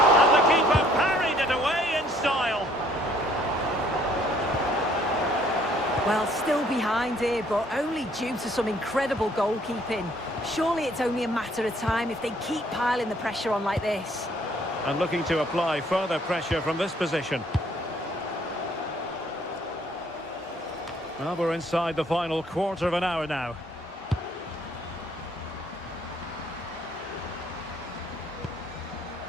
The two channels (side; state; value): both; normal; correlation 0.62